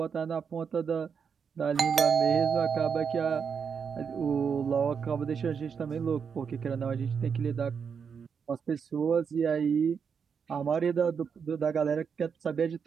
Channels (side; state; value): left; quieter; 6.5 dB